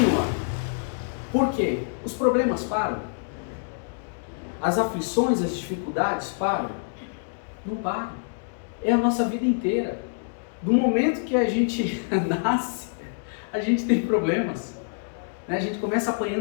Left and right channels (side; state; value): right; silent; digital silence